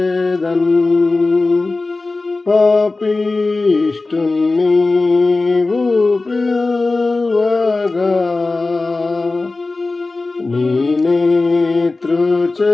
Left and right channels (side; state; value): right; quieter; 3.4 dB